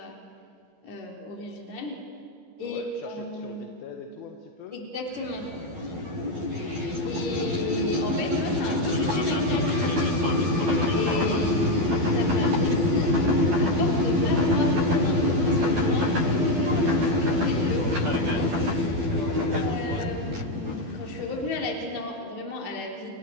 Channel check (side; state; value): left; late; 12 ms